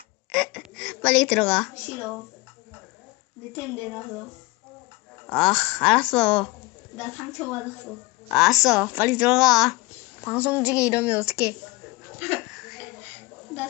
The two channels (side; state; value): right; quieter; 23.6 dB